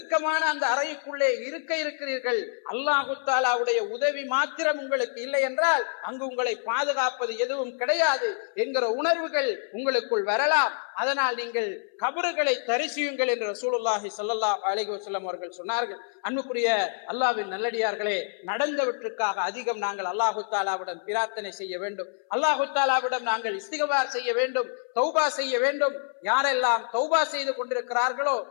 அந்த அறைக்குள்ளே இருக்க இருக்கிறீர்கள். அல்லாஹு தஆலாவுடைய உதவி மாத்திரம் உங்களுக்கு இல்லை என்றால் அங்கு உங்களை பாதுகாப்பது எதுவும் கிடையாது என்கிற உணர்வுகள் உங்களுக்கு வரலாம். அதனால் நீங்கள் கபறுகளை தரிசியுங்கள் என்று ரசூலுல்லாஹி ஸல்லல்லாஹு அலைஹி வஸல்லம் அவர்கள் சொன்னார்கள். அன்புக்குரிய அல்லாஹ்வின் நல்லடியார்களே, நடந்தவற்றுக்காக அதிகம் நாங்கள் அல்லாஹு தஆலாவிடம் பிரார்த்தனை செய்ய வேண்டும். அல்லாஹு தஆலாவிடம் நாங்கள் இஸ்திக்பார் செய்ய வேண்டும், தௌபா செய்ய வேண்டும். யாரெல்லாம் தௌபா செய்து கொண்டிருக்கிறார்களோ,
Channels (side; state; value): right; silent; 60 dB below the other